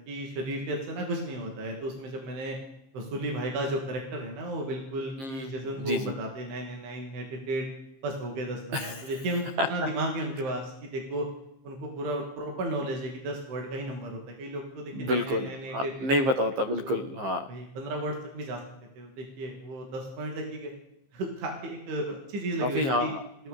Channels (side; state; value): left; late; 15 ms